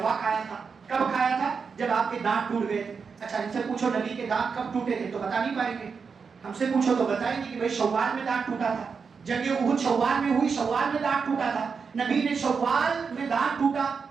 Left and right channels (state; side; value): quieter; left; 5.6 dB